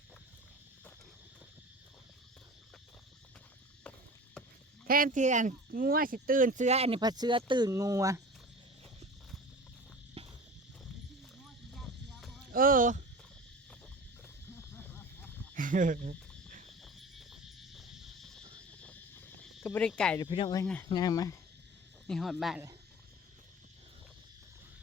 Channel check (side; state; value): both; normal; correlation 0.37